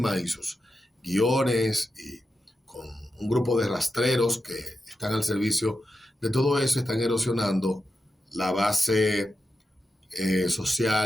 y sus guiones y con un grupo de rastreros que están al servicio de todo eso, están erosionando la base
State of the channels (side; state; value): both; normal; correlation 0.89